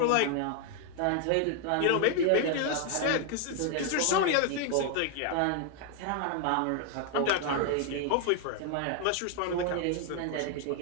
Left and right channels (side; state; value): both; different; correlation 0.00